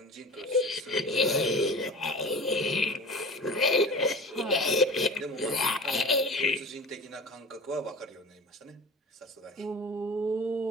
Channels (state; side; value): normal; both; correlation 0.37